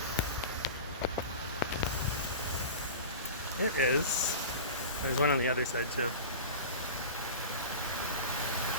It is. There's one on the other side too.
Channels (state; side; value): inverted; both; correlation -0.32